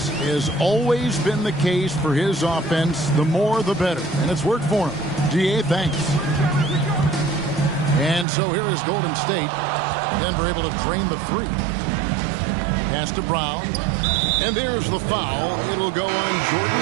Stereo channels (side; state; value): left; drops out; at 8.2 s